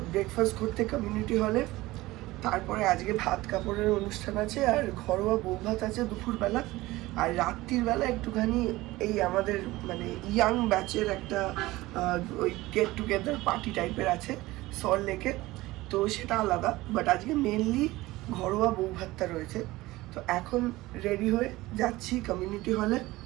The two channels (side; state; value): left; quieter; 18.9 dB